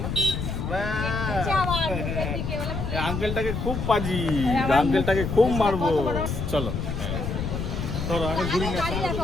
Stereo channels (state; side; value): noise; left; rumble, 3 dB below the sound